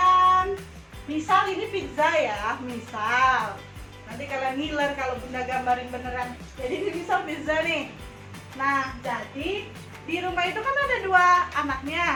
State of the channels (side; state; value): both; identical; correlation 1.00